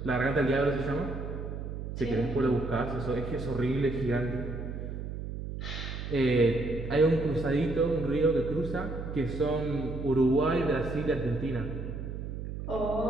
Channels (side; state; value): right; noise; hum, 6 dB below the sound